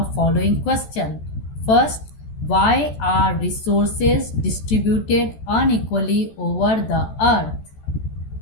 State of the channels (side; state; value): right; late; 14 ms